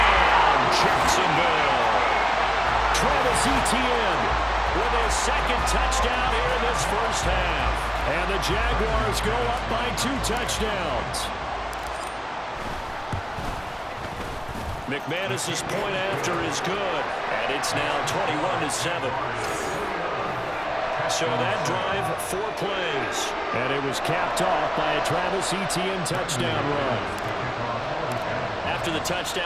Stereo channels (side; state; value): both; identical; correlation 1.00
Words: Jacksonville. Travis Etienne With his second touchdown here in this first half. And the Jaguars go up by 2 touchdowns. McManus's point after is good, and it's now 21-7. So that drive, 4 plays. And it was capped off by a Travis Etienne touchdown run. After the